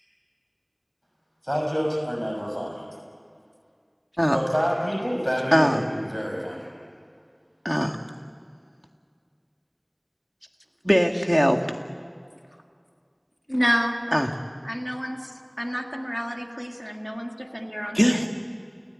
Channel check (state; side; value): identical; both; correlation 1.00